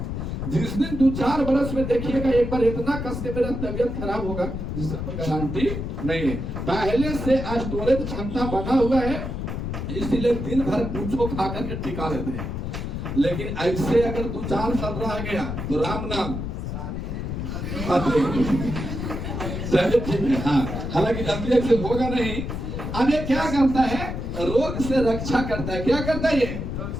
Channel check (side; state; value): left; noise; rumble, 4 dB below the sound